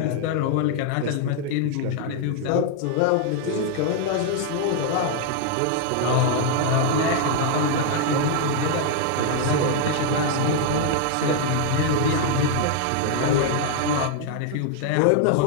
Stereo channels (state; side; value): different; both; correlation 0.00